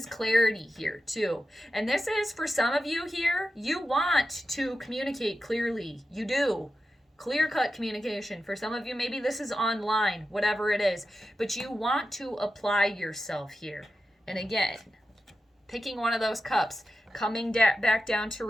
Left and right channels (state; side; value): normal; both; correlation 0.91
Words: clarity here too. And this is, for some of you here, you want to communicate clearly. You do. Clear-cut communication. For some of you, maybe this is online, whatever it is, but you want to apply yourself here. And again, picking one of those cups, coming back down to